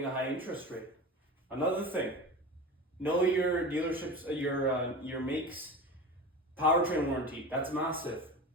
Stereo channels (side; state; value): both; normal; correlation 0.30